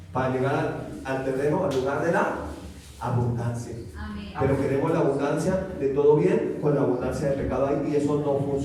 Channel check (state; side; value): identical; both; correlation 1.00